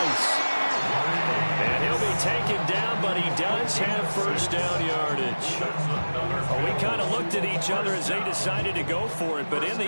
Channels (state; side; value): inverted; both; correlation -1.00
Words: And he'll be taken down, but he does have first down yardage. Well, we kind of looked at each other as they decided to go for it, but in the